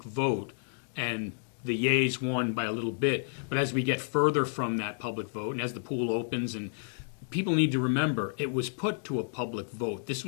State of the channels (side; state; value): right; silent; digital silence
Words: vote, and the yeas won by a little bit, but as we get further from that public vote, and as the pool opens, and people need to remember, it was put to a public vote. This